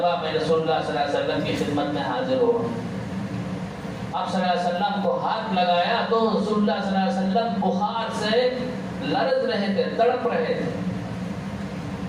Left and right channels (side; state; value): both; identical; correlation 1.00